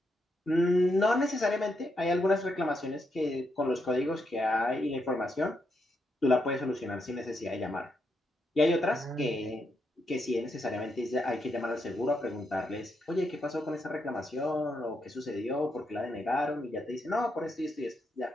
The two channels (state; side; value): normal; both; correlation 0.81